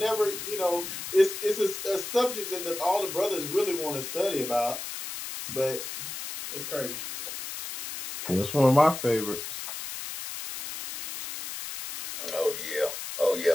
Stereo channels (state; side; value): noise; left; hiss, 7 dB below the sound